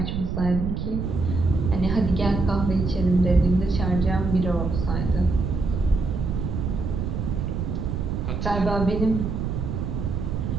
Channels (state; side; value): noise; right; rumble, 2 dB below the sound